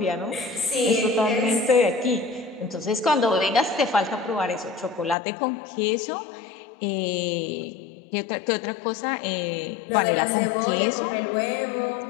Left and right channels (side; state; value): right; drops out; at 5.2 s